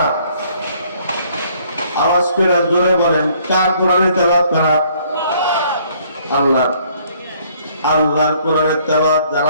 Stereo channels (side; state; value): both; inverted; correlation -0.62